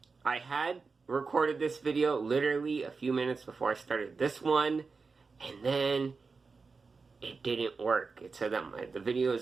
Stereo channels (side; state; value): left; quieter; 4.6 dB